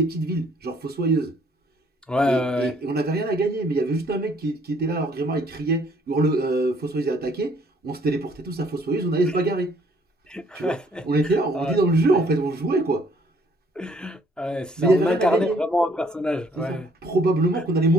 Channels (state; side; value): normal; both; correlation 0.63